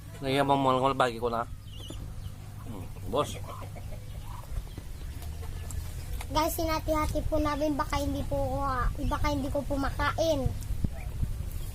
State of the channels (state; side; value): identical; both; correlation 1.00